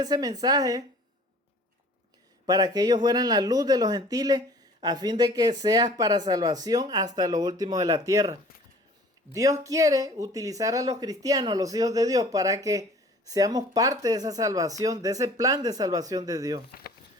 mensaje para que ellos fueran la luz de los gentiles, a fin de que seas para salvación hasta lo último de la tierra. Dios quiere utilizar a los cristianos, a los hijos de Dios, para que seamos parte de esa salvación, de ese plan de salvación de Dios.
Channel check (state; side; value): normal; both; correlation 0.49